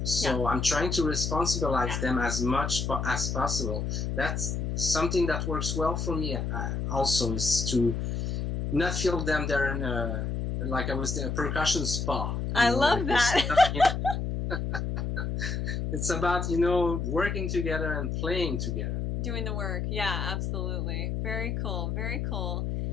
So I'm trying to responsibilize them as much as possible. That's something that works well for me also, is to not feel them they're in a, like I was a percussion spa. I love that. It's about, working together and playing together. Doing the work. Yeah, absolutely. Very cool. Very cool.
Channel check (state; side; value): noise; left; hum, 2 dB below the sound